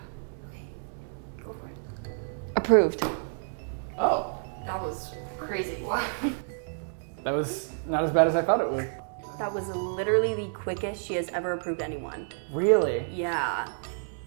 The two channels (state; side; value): silent; left; digital silence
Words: Okay. Go for it. Approved. Oh. That was crazy. That was not as bad as I thought it would. That was literally the quickest she has ever approved anyone. Really? Yeah.